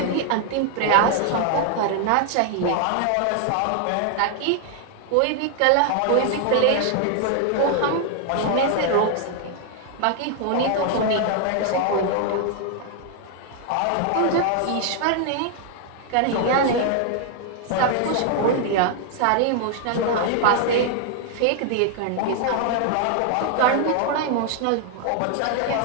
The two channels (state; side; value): different; both; correlation 0.00